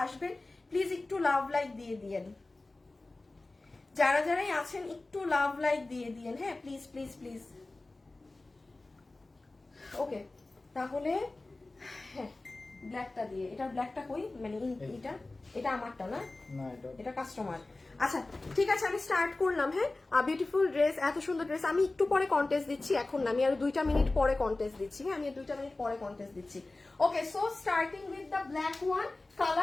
আসবেন প্লিজ একটু লাভ লাইক দিয়ে দিয়েন, যারা যারাই আছেন একটু লাভ লাইক দিয়ে দিয়েন, হ্যাঁ, প্লিজ প্লিজ প্লিজ। ওকে, তাহলে হ্যাঁ ব্ল্যাকটা দিয়ে, এটা ব্ল্যাকটা কই, মানে এটা আমারটা না, এটা কাস্টমার। আচ্ছা ঠিক আছে, আমি স্টার্ট করলাম, হ্যাঁ। বিউটিফুল ড্রেস, এত সুন্দর ড্রেস। আমি একটু পরে কন্টেস্ট দিচ্ছি, এখন না, আমি আরো 2টা মিনিট পরে কন্টেস্ট দিচ্ছি, হ্যাঁ, আমি 2টা মিনিট পরে কন্টেস্ট দিচ্ছি। Okay, so starting with the black one.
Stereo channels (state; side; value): quieter; right; 3.1 dB